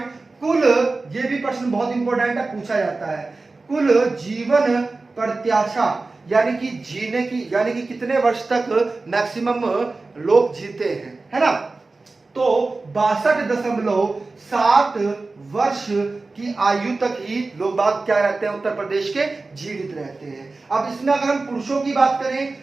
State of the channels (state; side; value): quieter; left; 3.6 dB